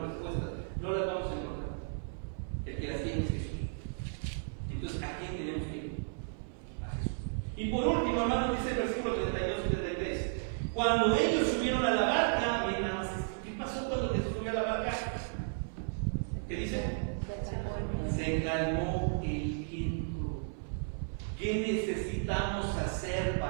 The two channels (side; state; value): left; silent; 55 dB below the other